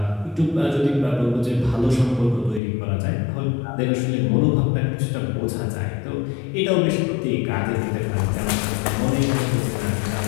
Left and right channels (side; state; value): right; drops out; at 2.6 s